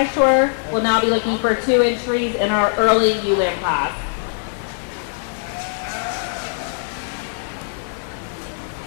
We'll now be looking for 2 entries in our early ewe lamb class.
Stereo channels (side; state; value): right; silent; digital silence